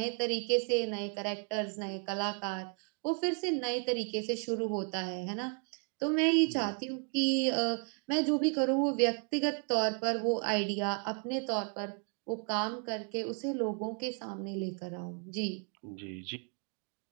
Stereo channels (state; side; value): quieter; left; 38.4 dB